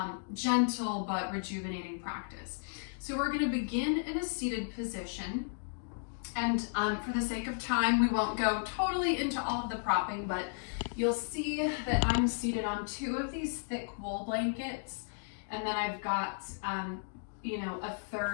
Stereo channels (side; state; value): right; silent; digital silence